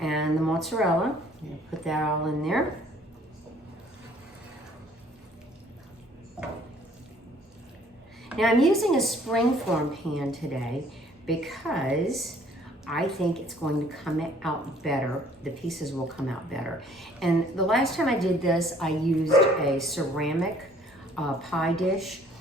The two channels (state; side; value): normal; both; correlation 0.58